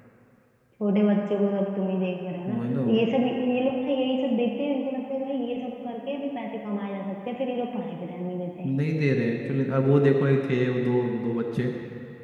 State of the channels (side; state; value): both; identical; correlation 1.00